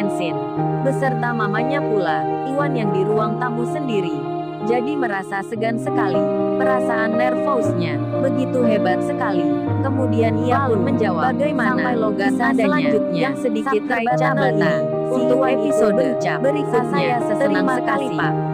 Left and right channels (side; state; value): both; identical; correlation 1.00